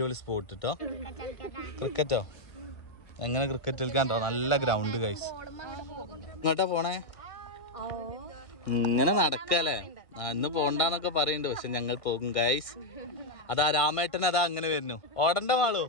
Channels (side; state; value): right; late; 1.6 ms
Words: സ്പോട്ട് കേട്ടോ. ക്രിക്കറ്റോ? എങ്ങനെ ക്രിക്കറ്റ് കളിക്കാണ്ടോ? നല്ല ഗ്രൗണ്ട് ഗൈസ്. ഇങ്ങോട്ടാ പോണേ? ഇങ്ങനെ നടക്കല്ലേ? ഇന്ന് പോണ്ടെന്നൊക്കെ പറയുന്നുണ്ട്, പക്ഷെ ഞങ്ങൾ പോകും ഗൈസ്. അതാ രാമേട്ടൻ അതാ അങ്ങനെ വരുന്നു. ഓടണ്ട മാളൂ.